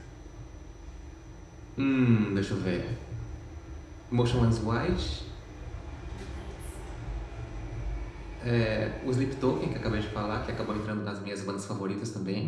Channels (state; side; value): identical; both; correlation 1.00